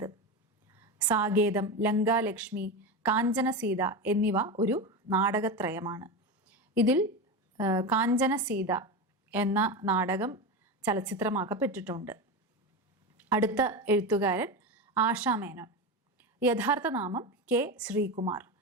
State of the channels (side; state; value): both; normal; correlation 0.20